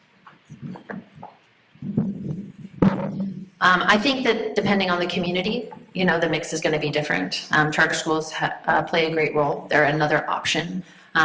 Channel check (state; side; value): identical; both; correlation 1.00